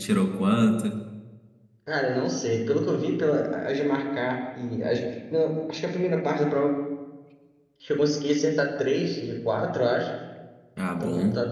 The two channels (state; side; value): identical; both; correlation 1.00